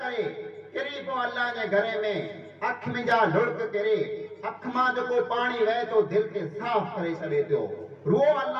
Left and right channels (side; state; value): both; identical; correlation 1.00